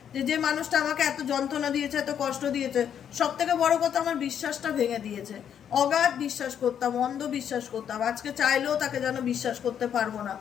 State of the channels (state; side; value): quieter; right; 8.8 dB